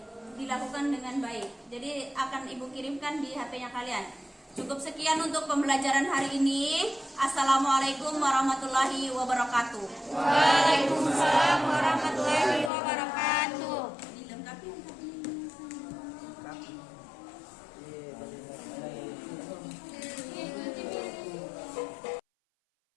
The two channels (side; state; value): right; drops out; at 12.7 s